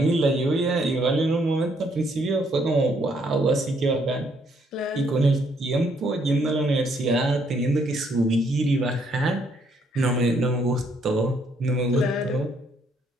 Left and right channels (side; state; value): both; normal; correlation 0.70